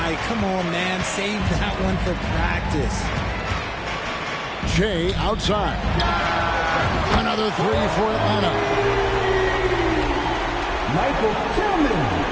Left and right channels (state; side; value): identical; both; correlation 1.00